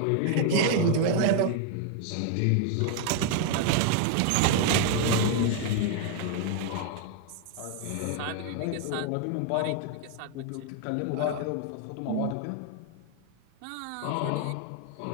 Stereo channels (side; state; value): both; different; correlation 0.00